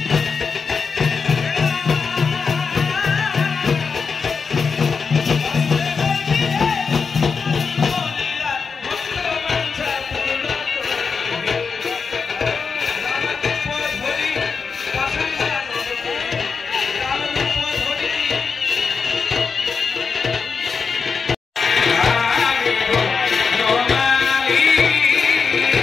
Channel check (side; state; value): right; quieter; 5.3 dB